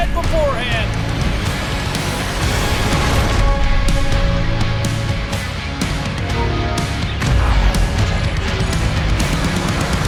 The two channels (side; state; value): both; identical; correlation 1.00